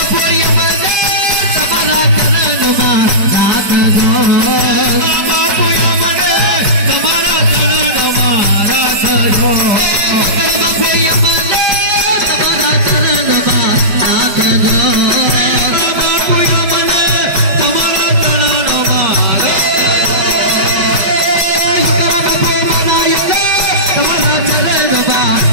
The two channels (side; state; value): left; late; 5.0 ms